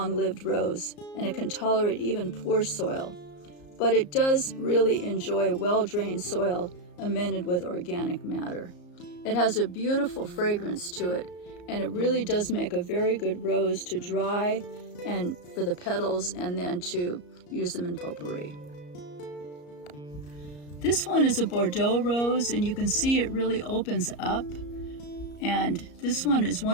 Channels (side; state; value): right; late; 34 ms